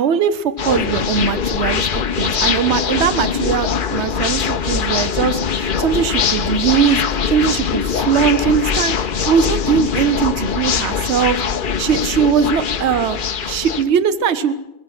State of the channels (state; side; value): late; left; 3.2 ms